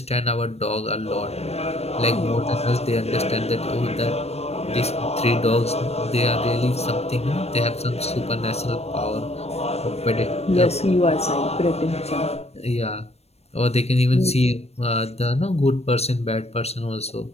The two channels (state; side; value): late; right; 0.31 ms